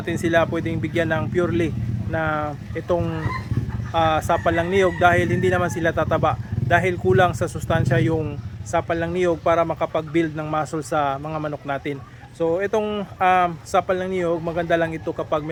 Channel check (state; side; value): identical; both; correlation 1.00